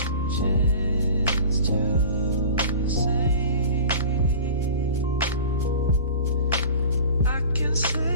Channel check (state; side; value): inverted; both; correlation -0.39